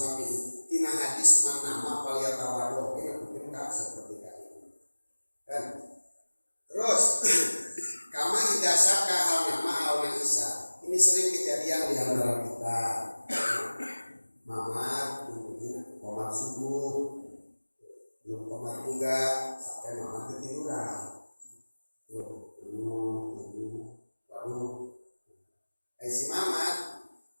tina hadis man nama falyatawado, mungkin enggak seperti kali kan. Terus kama idza syaka hal nama au isa. Ini sering kejadian di antara kita. Mamat mungkin komat subuh, belum komat juga sampai mamat ketiduran. Lalu si mamat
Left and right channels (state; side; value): inverted; both; correlation -1.00